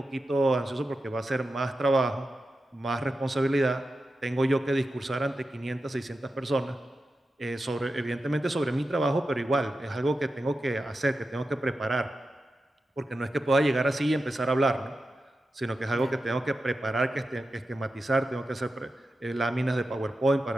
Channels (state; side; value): normal; both; correlation 0.91